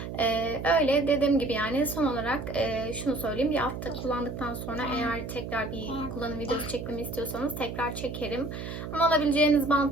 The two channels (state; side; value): noise; right; hum, 7 dB below the sound